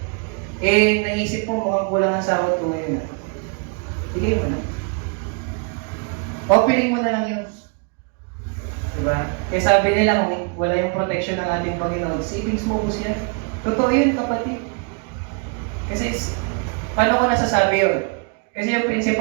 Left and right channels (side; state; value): left; quieter; 36.5 dB